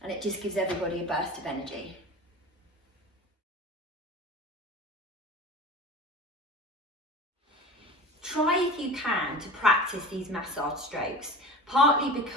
and it just gives everybody a burst of energy. Try if you can to practice these massage strokes, partly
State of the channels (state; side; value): normal; both; correlation 0.34